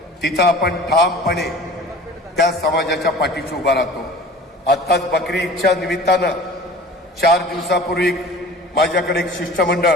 तिथं आपण ठामपणे त्या समाजाच्या पाठीशी उभा राहतो. आत्ताच बकरी ईदच्या निमित्तानं 4 दिवसापूर्वी माझ्याकडे एक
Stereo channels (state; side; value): normal; both; correlation 0.42